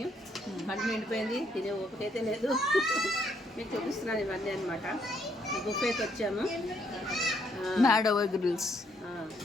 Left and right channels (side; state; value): both; normal; correlation 0.72